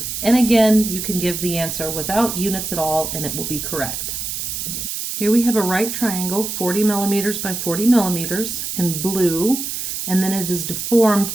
And again, you can give the answer without units at all, and it will be correct. Here we have a right triangle, 40 millimeters by 40 millimeters in blue, and then it is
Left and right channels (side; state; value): right; noise; hiss, 4 dB below the sound